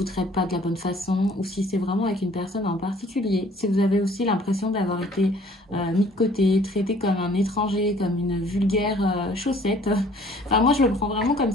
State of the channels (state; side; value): normal; both; correlation 0.56